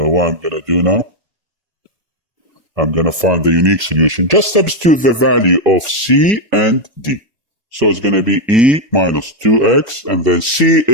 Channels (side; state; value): left; late; 1.7 ms